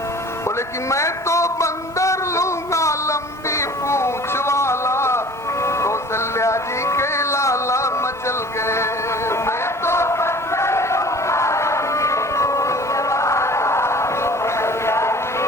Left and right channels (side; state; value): both; normal; correlation 0.46